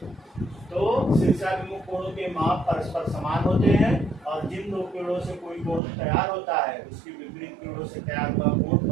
तो शीर्षाभिमुख कोणों के माप परस्पर समान होते हैं, और जिन दो किरणों से कोई कोण तैयार होता है, उसकी विपरीत किरणों से तैयार हुआ कोण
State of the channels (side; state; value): left; drops out; at 5.8 s